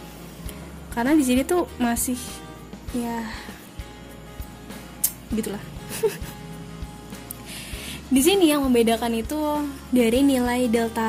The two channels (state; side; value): identical; both; correlation 1.00